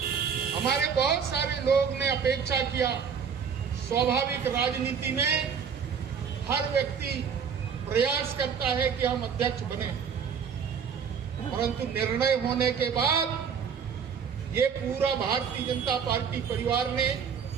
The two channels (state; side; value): quieter; left; 6.8 dB